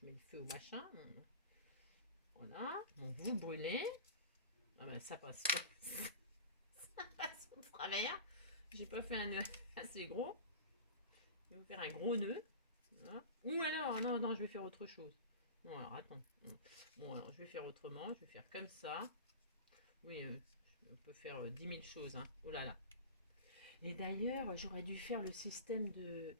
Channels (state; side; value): inverted; both; correlation -0.32